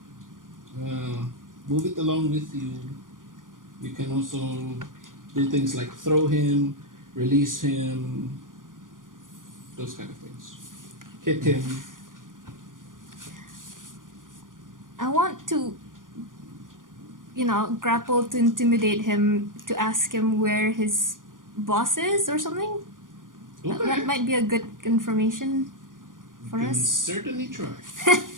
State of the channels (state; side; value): late; left; 0.89 ms